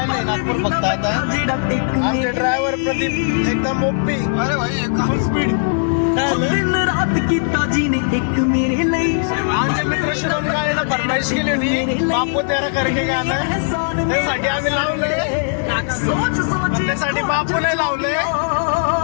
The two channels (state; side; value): silent; right; digital silence